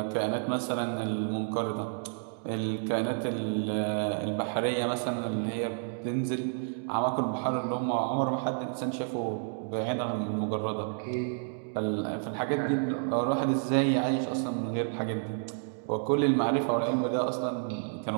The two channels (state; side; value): silent; left; digital silence